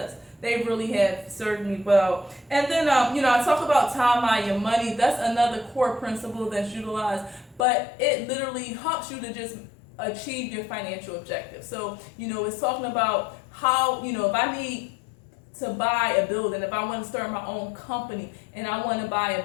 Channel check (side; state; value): right; drops out; at 7.7 s